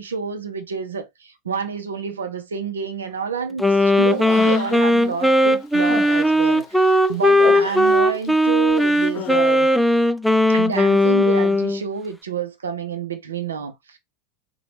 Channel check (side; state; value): both; normal; correlation 0.73